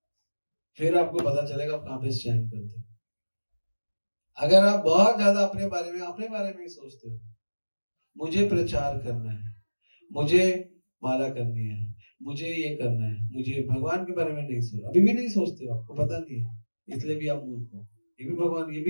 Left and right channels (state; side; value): inverted; both; correlation -1.00